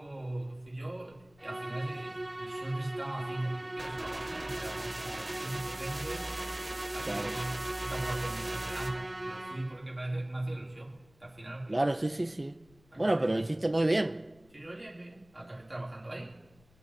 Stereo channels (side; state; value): left; noise; rumble, 28 dB below the sound